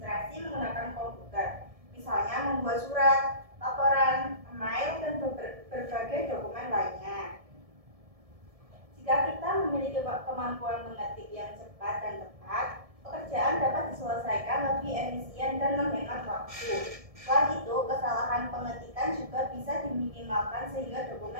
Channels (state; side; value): late; left; 1.7 ms